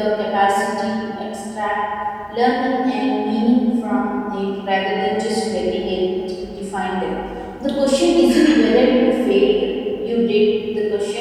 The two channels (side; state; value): both; identical; correlation 1.00